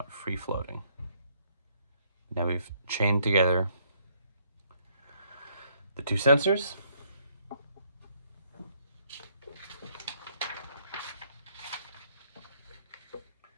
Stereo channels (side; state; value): both; inverted; correlation -0.68